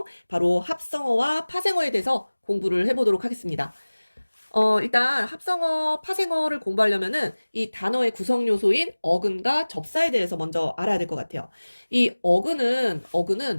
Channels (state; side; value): inverted; both; correlation -1.00